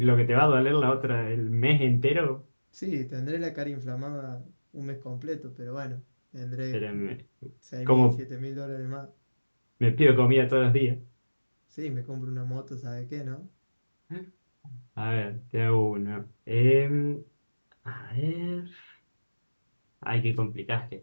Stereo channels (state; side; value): inverted; both; correlation -1.00